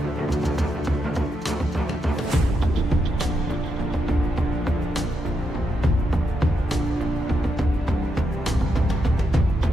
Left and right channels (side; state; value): both; normal; correlation 0.83